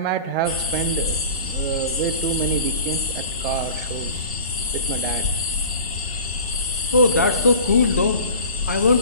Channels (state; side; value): inverted; both; correlation -0.39